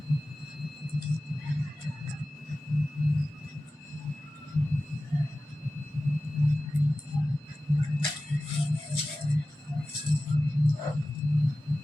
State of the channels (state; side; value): normal; both; correlation 0.95